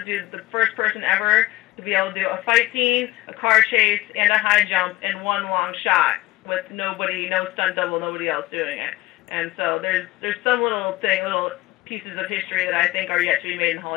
do the first person ever to be able to do a fight scene, a car chase, and a high jump in one long shot with nobody, no stunt double, nobody else doing it. And so there's some little pieces of history that I think are yet to be made in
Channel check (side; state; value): right; quieter; 17.9 dB